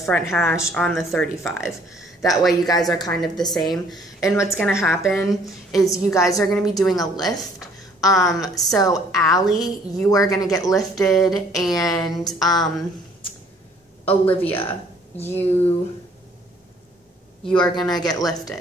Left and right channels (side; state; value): both; normal; correlation 0.60